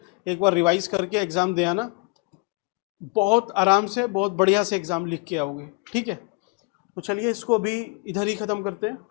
एक बार रिवाइज करके एग्ज़ाम दे आना, बहुत आराम से बहुत बढ़िया से एग्ज़ाम लिख के आओगे, ठीक है। तो चलिए इसको अभी इधर ही ख़त्म करते हैं,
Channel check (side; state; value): right; quieter; 31.3 dB